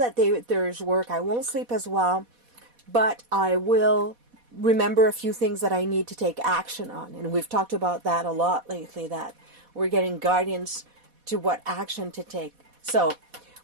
there's work. I won't sleep as well, but I will remember a few things that I need to take action on. And we've talked about that a lot lately, that we're getting guidance to what action to take. So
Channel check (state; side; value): late; left; 4.1 ms